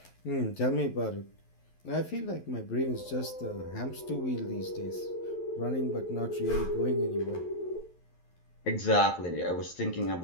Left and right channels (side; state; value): right; late; 11 ms